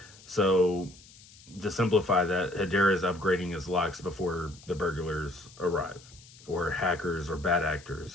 So to simplify that, Hedera is upgrading its locks before the burglars arrive, or hackers, or bad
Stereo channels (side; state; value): left; noise; hiss, 22 dB below the sound